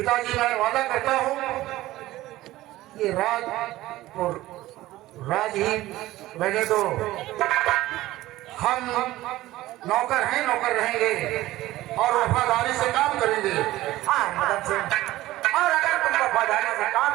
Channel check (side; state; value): left; quieter; 16.5 dB